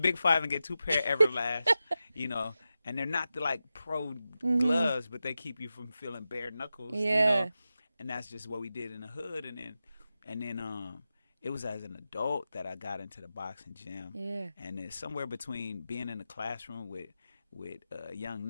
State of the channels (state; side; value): inverted; both; correlation -0.92